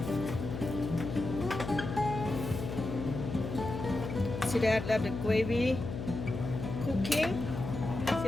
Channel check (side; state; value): left; noise; hum, 6 dB below the sound